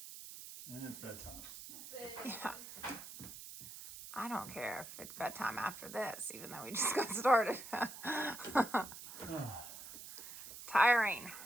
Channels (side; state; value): right; noise; hiss, 12 dB below the sound